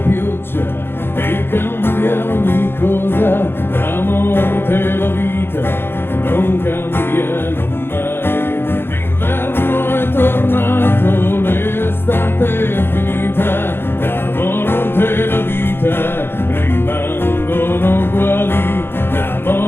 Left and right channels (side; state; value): right; late; 0.11 ms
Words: pioggia e cambia ogni cosa, la morte e la vita non cambiano mai. L'inverno è tornato, l'estate è finita, la morte e la vita rimangono uguali, la